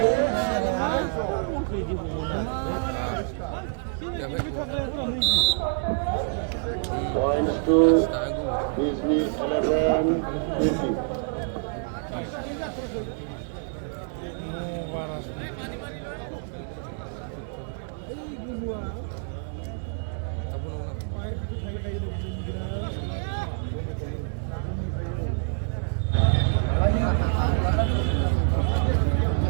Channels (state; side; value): silent; left; 60 dB below the other